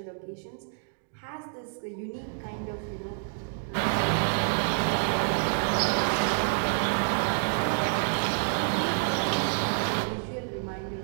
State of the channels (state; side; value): silent; left; digital silence